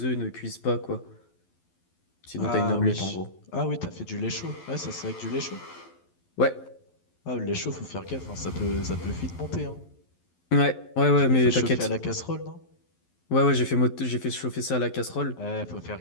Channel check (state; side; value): late; right; 12 ms